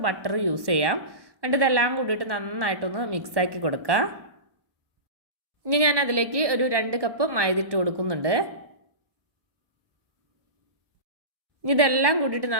ബട്ടർ യൂസ് ചെയ്യാം. എന്നിട്ട് ഇതെല്ലാം കൂടിയിട്ട് നന്നായിട്ടൊന്ന് മിക്സാക്കി കൊടുക്കുക. ഇനി ഞാൻ അതിലേക്ക് ഒരു 2 കപ്പ് മൈദ ഇട്ട് കൊടുക്കുന്നുണ്ട്. ഇനി ഇതെല്ലാം കൂടിയിട്ട്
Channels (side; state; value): left; late; 1.1 ms